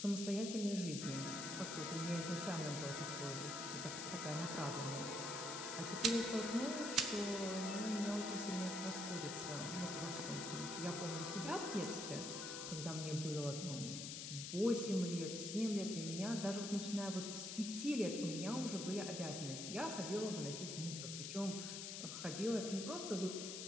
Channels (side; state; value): left; noise; hiss, 5 dB below the sound